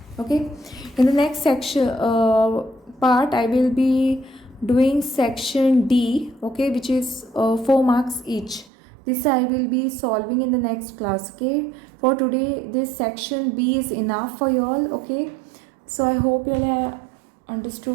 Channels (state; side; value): drops out; left; at 8.7 s